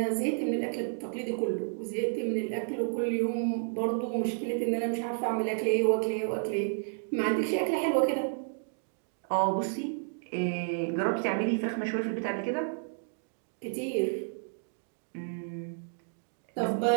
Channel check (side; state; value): left; silent; digital silence